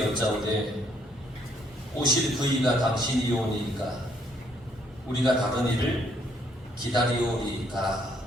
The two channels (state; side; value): normal; both; correlation 0.68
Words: 여짜오되 오실 그이가 당신이 오니까 우리가 다른 일을 기다리오리까.